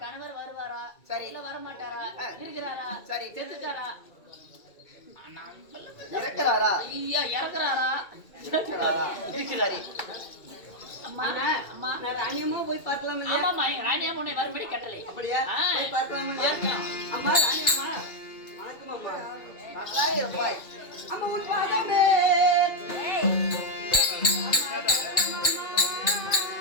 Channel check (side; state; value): right; late; 2.3 ms